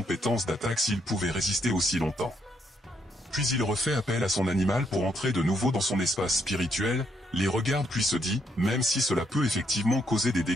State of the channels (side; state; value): both; normal; correlation 0.74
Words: d'attaque s'ils pouvaient résister aussi longtemps. Puis il refait appel à son animal pour entrer de nouveau dans son espace spirituel, les regarde puis se dit, même si cela peut effectivement causer des